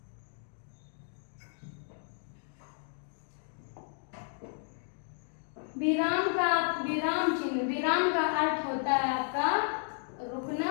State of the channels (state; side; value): silent; right; 56 dB below the other